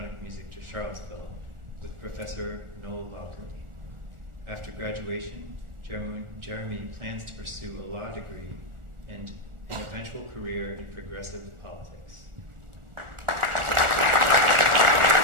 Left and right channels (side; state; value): left; late; 1.4 ms